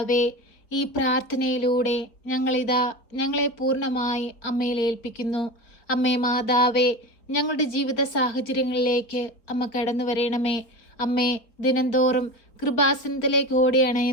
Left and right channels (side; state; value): right; late; 4.2 ms